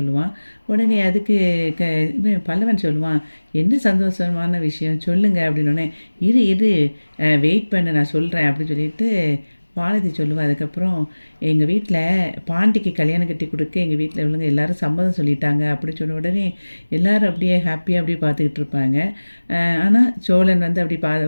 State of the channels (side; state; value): both; inverted; correlation -1.00